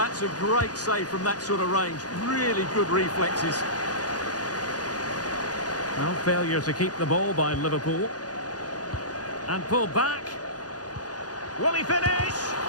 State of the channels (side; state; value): right; late; 0.68 ms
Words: a great save from that sort of range. Really good reflexes. Well, failure to keep the ball by Liverpool. And pulled back. Will he finish?